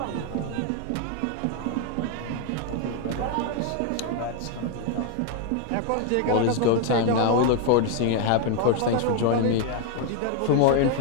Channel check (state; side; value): different; both; correlation 0.01